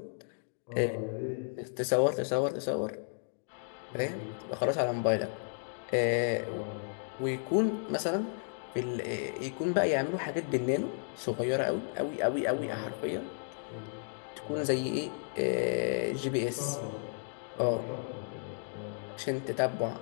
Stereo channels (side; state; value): right; silent; digital silence